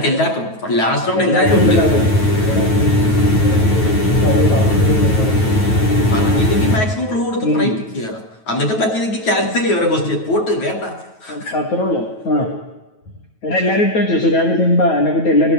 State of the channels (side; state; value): right; late; 9.2 ms